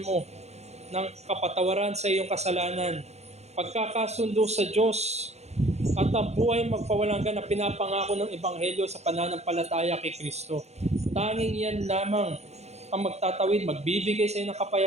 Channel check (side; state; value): left; late; 0.32 ms